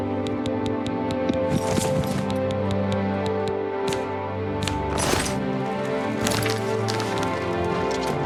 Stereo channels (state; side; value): identical; both; correlation 1.00